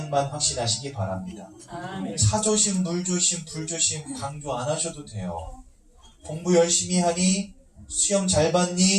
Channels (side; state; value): both; identical; correlation 1.00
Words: 확신하시기 바랍니다. 차조심, 물조심, 불조심 강조 안 하셔도 돼요. 공부 열심히 하니, 시험 잘